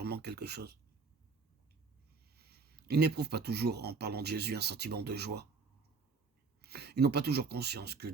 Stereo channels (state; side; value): quieter; left; 4.7 dB